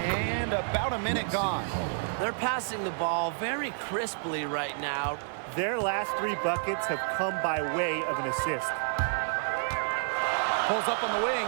about a minute gone. They're passing the ball very crisply right now. Their last 3 buckets have come by way of an assist. Pulls up on the wing.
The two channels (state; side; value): silent; left; digital silence